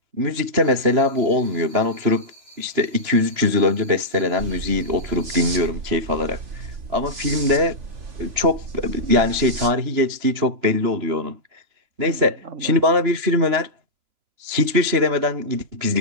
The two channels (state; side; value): late; left; 3.0 ms